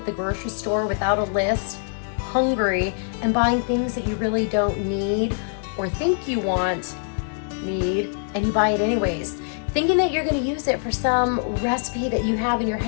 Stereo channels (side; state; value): right; silent; digital silence